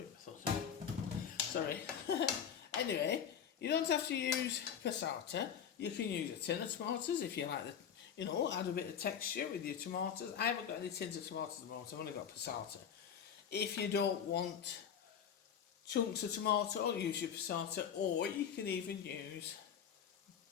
I thought. Sorry. Anyway, you don't have to use passata. You can use a tin of tomatoes if you like the, you know, add a bit of texture with your tomatoes. I haven't got any tins of tomatoes at the moment, I've only got passata. If you don't want chunks of tomato, use your passata, or you can even use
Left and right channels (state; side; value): quieter; right; 8.2 dB